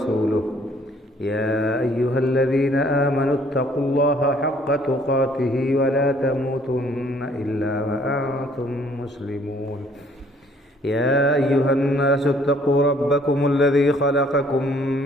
يا أيها الذين آمنوا اتقوا الله حق تقاته ولا تموتن إلا وأنتم مسلمون يا أيها الناس اتقوا ربكم الذي خلقكم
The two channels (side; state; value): both; normal; correlation 0.60